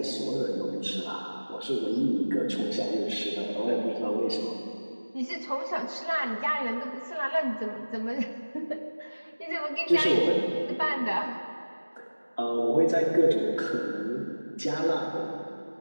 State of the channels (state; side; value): inverted; both; correlation -1.00